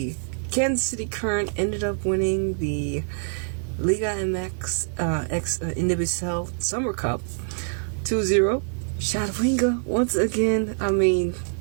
Kansas City Current ended up winning the Liga MX Nwsl Summer Cup 2-0. Shadwinga, once again,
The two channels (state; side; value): silent; left; 57 dB below the other